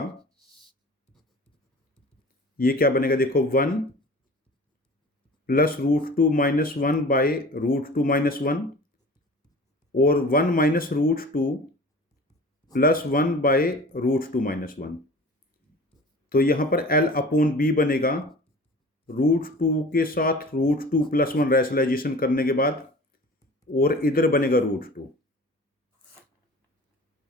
ये क्या बनेगा? देखो 1 प्लस √2 माइनस 1 बाय √2 माइनस 1 और 1 माइनस √2 प्लस 1 बाय √2 माइनस 1। तो यहां पर l/b बनेगा √2 के साथ √2 प्लस 1 रैशनलाइजेशन करने के बाद, और इधर बनेगा √2।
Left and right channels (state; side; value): normal; both; correlation 0.41